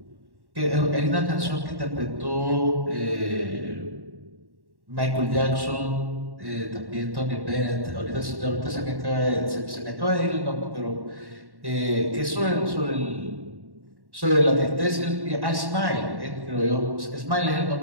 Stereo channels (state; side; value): late; left; 1.1 ms